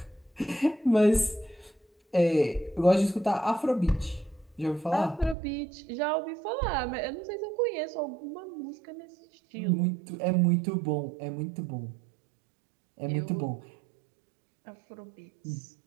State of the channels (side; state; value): left; drops out; at 5.4 s